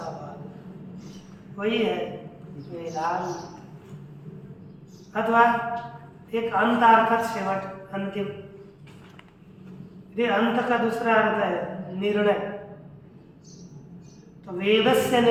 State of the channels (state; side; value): identical; both; correlation 1.00